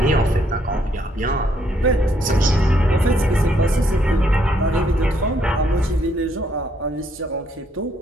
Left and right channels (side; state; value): both; normal; correlation 0.71